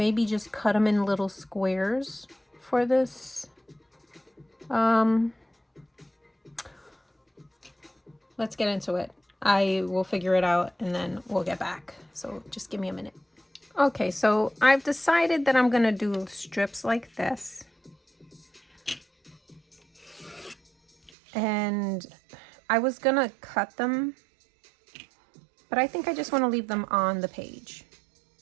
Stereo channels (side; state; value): left; drops out; at 21.1 s